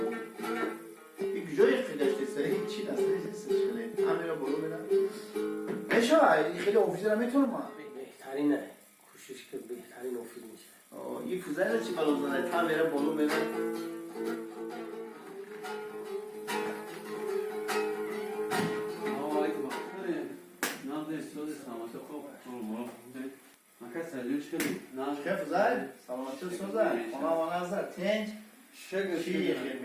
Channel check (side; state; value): both; identical; correlation 1.00